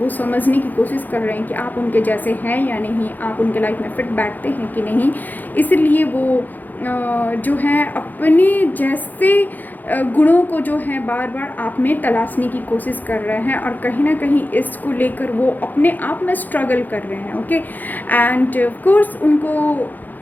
समझने की कोशिश कर रहे हैं कि आप उनके जैसे हैं या नहीं, आप उनके लाइफ में फिट बैठते हैं कि नहीं, इसलिए वो जो है अपने जैसे गुणों को जो है बार बार आप में तलाशने की कोशिश कर रहे हैं, और कहीं ना कहीं इसको लेकर वो अपने आप में स्ट्रगल कर रहे हैं। ओके, एंड ऑफ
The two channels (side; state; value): right; late; 0.085 ms